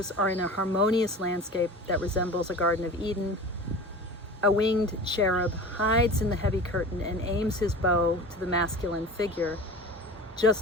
are in a harmonious landscape that resembles a Garden of Eden. A winged cherub hides in the heavy curtain and aims his bow to the masculine figure,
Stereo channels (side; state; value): both; normal; correlation 0.36